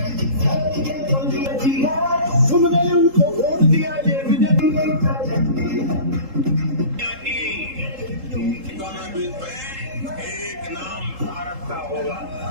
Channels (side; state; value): left; late; 3.8 ms